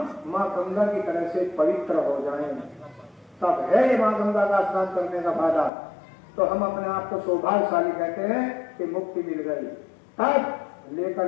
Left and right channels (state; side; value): drops out; right; at 5.7 s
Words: माँ गंगा की तरह से पवित्र हो जाएं, तब है माँ गंगा का स्नान करने का फायदा। तो हम अपने आप को सौभाग्यशाली कहते हैं कि मुक्ति मिल गई। तब लेकर